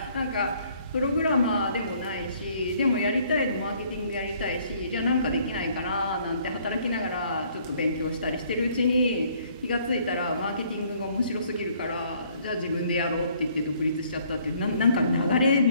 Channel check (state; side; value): inverted; both; correlation -0.62